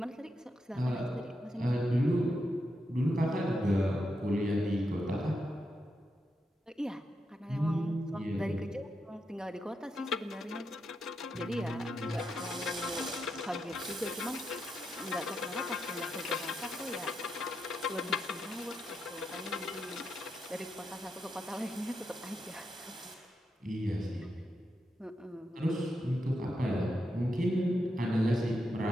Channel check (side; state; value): both; normal; correlation 0.85